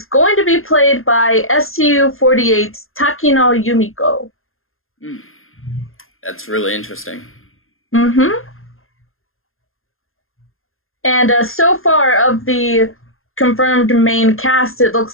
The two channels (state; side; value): late; right; 0.61 ms